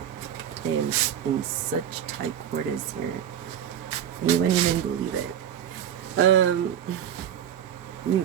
in such tight quarters here, you wouldn't even believe it. You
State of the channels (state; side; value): quieter; left; 9.8 dB